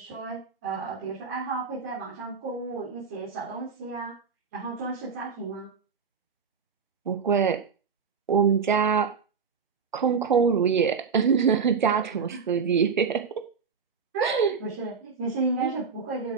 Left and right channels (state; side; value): quieter; left; 5.8 dB